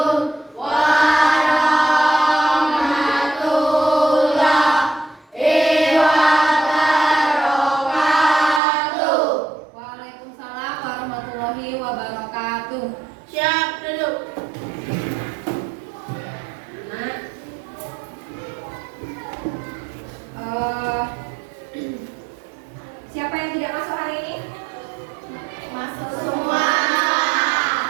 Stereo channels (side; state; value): left; drops out; at 8.6 s